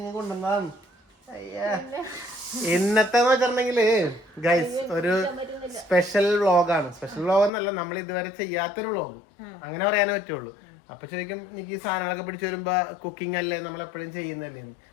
കൊണ്ടുവന്നതാണ്. അയ്യാ, ഇന്നത്തെ വെച്ചിട്ടുണ്ടെങ്കില് ഗൈസ് ഒരു സ്പെഷ്യൽ വ്ളോഗാണ്. സ്പെഷ്യൽ വ്ളോഗ് എന്നല്ല, നമ്മൾ ഇതുവരെ ചെയ്യാത്തൊരു വ്ളോഗ്, അങ്ങനെ പറയാനേ പറ്റുള്ളൂ. അപ്പൊ ശരിക്കും എനിക്ക് ഈ സാധനങ്ങളൊക്കെ പിടിച്ചു വരുമ്പോ കുക്കിംഗ് അല്ലേ നമ്മൾ എപ്പോഴും ചെയ്യുന്നല്ലേ,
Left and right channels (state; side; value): drops out; right; at 7.5 s